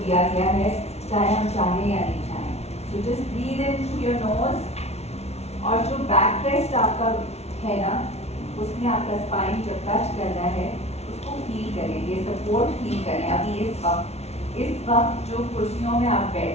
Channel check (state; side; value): late; right; 0.31 ms